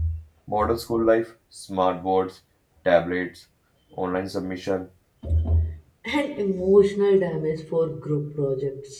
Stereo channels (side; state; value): both; identical; correlation 1.00